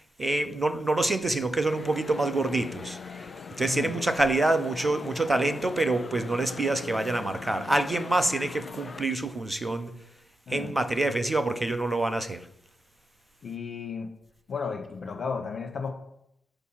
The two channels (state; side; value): normal; both; correlation 0.88